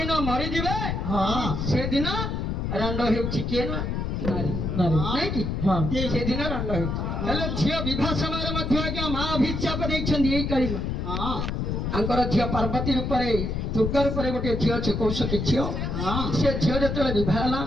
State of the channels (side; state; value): left; noise; rumble, 2 dB below the sound